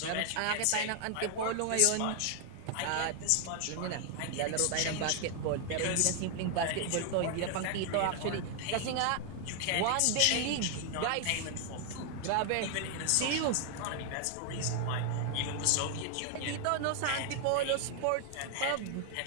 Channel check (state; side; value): different; both; correlation 0.00